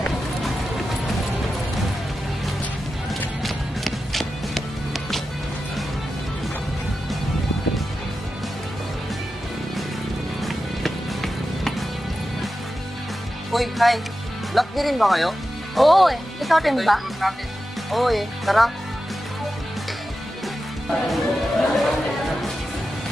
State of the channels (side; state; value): both; normal; correlation 0.92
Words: Uy, hi. Lock niyo rin ba kayo? Oo eh. Ikaw rin ba? Oo eh. Tara.